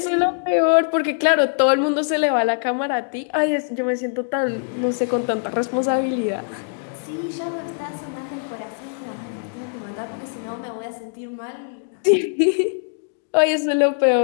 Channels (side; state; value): right; silent; digital silence